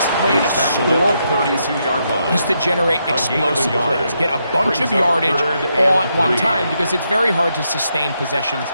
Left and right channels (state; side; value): inverted; both; correlation -0.80